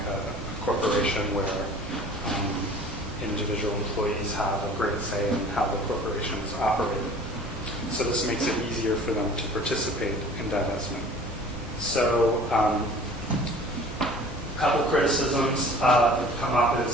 a corporation where individual employees have a great say in how the corporation is operated. So this makes it easier for them to participate in divestment. So a couple criticisms that have come up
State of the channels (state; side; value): normal; both; correlation 0.47